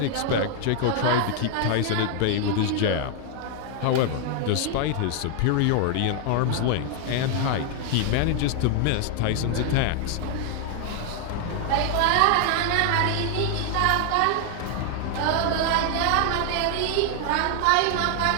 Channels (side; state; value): both; different; correlation 0.00